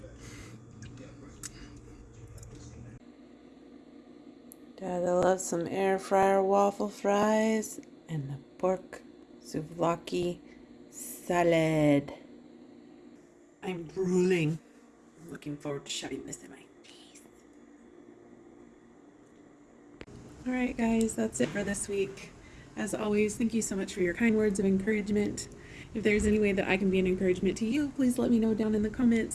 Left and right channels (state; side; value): identical; both; correlation 1.00